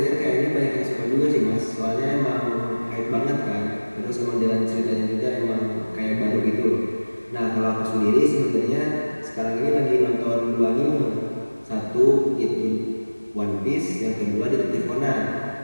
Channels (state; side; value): inverted; both; correlation -1.00